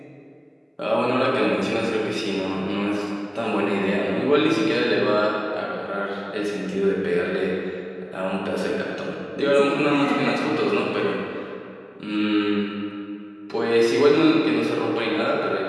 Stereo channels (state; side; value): identical; both; correlation 1.00